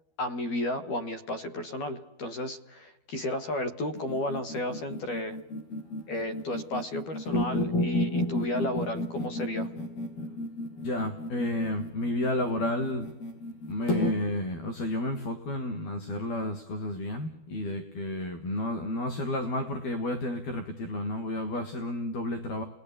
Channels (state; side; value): late; right; 12 ms